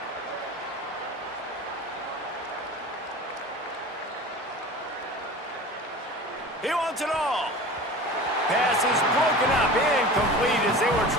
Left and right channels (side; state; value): both; normal; correlation 0.36